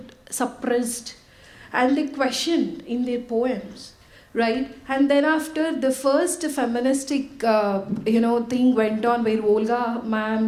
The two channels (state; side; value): identical; both; correlation 1.00